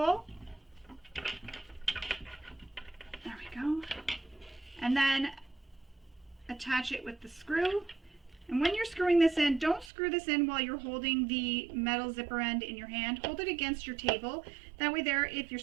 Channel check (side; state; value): left; drops out; at 9.9 s